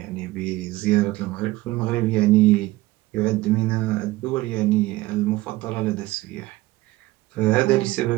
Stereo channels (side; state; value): left; quieter; 18.5 dB